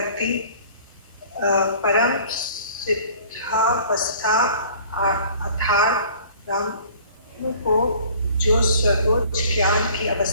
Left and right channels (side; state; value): both; inverted; correlation -0.50